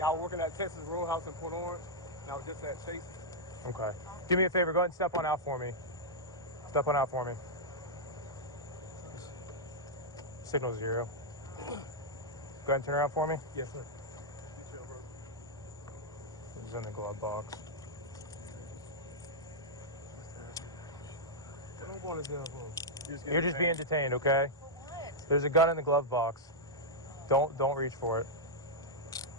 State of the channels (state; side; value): normal; both; correlation -0.06